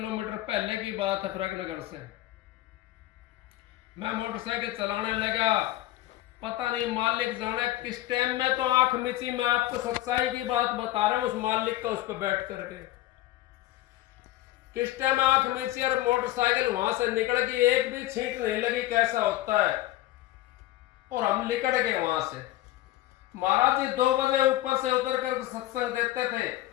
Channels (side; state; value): right; quieter; 15.6 dB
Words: पहले की बात है, फरकनगर से मैं मोटरसाइकिल चलाने लगा। पता नहीं मालिक जाने किस टाइम में तो आंख मिची। मैं आपको सच्चाई की बात बता रहा हूं, उस मालिक का, उस पर बैठ करके किस टाइम आंख मिची और मोटरसाइकिल वहां से निकल गई, एक भी छींट नहीं लगी। कैसा होता है, और हम निकल गए वहां से। महाराज जी 2 बजे ऊपर से उतर कर सत्संग देते थे,